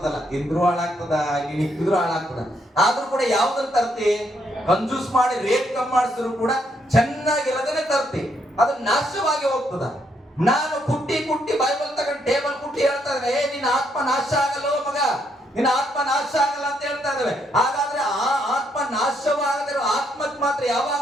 ತಿಂದ್ರು ಹಾಳಾಗ್ತದ, ನೀನ್ ಇಕ್ಕಿದ್ರು ಹಾಳಾಗ್ತದ. ಆದ್ರೂ ಕೂಡ ಯಾವ್ದನ್ನ ತರ್ತಿ, ಕಂಜೂಸ್ ಮಾಡಿ ರೇಟ್ ಕಮ್ಮಿ ಮಾಡಿಸಿದ್ರು ಕೂಡ ಚೆನ್ನಾಗಿರೋದನ್ನೇ ತರ್ತಿ. ಅದು ನಾಶವಾಗಿ ಹೋಗ್ತದ. ನಾನು ಕುಟ್ಟಿ ಕುಟ್ಟಿ ಬೈಬಲ್ ತಗೊಂಡು ಟೇಬಲ್ ಕುಟ್ಟಿ ಹೇಳ್ತಾ ಇದ್ದೇವೆ, ನಿನ್ನ ಆತ್ಮ ನಾಶ ಆಗಲ್ಲ ಮಗ, ನಿನ್ನ ಆತ್ಮ ನಾಶ ಆಗಲ್ಲ ಅಂತ ಹೇಳ್ತಾ ಇದ್ದೇವೆ. ಹಾಗಾದ್ರೆ ಆ ಆತ್ಮ ನಾಶವಾಗದಿರೋ ಆತ್ಮಕ್ಕೆ ಮಾತ್ರ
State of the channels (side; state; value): both; normal; correlation 0.74